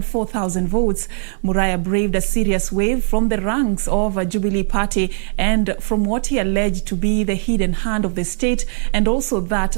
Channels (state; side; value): silent; left; digital silence